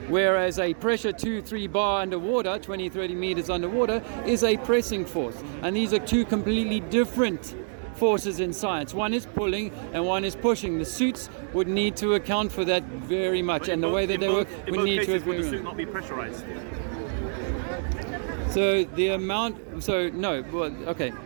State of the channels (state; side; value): silent; left; 60 dB below the other